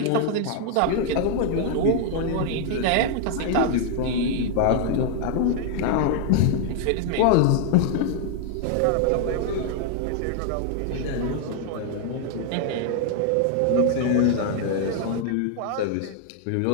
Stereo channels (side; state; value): both; different; correlation 0.00